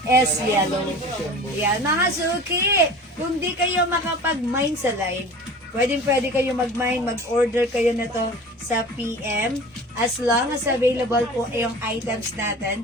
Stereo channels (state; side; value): normal; both; correlation 0.39